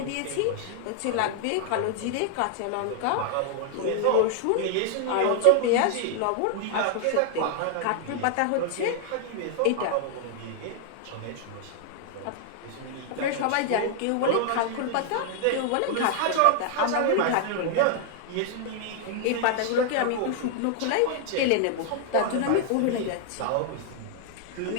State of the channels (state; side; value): different; both; correlation 0.00